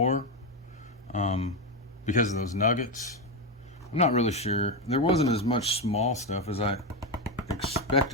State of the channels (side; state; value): both; normal; correlation 0.10